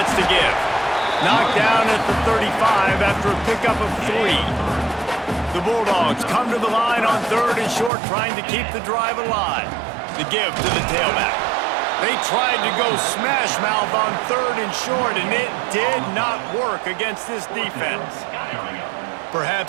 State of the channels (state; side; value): drops out; left; at 7.9 s